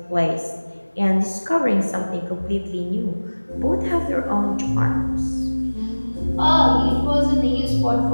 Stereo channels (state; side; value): inverted; both; correlation -1.00